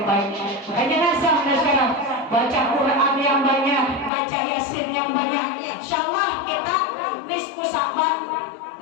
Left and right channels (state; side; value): drops out; right; at 4.1 s